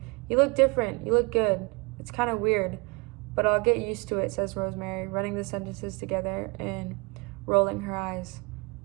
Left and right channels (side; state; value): left; quieter; 28.9 dB